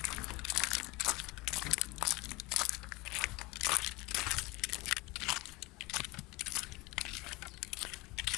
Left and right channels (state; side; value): quieter; right; 23.1 dB